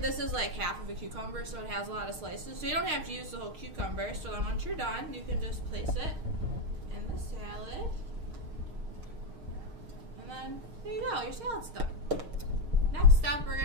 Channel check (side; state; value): left; late; 6.5 ms